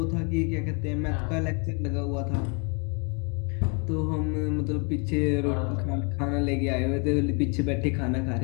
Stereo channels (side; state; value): right; quieter; 34.1 dB